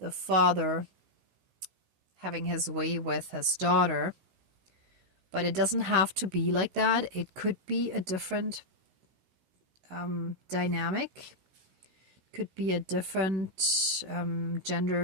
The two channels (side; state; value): left; late; 16 ms